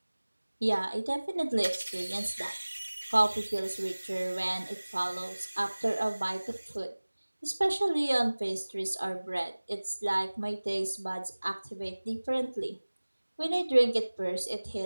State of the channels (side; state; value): both; inverted; correlation -1.00